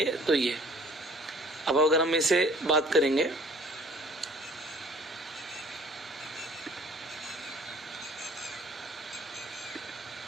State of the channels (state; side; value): normal; both; correlation 0.52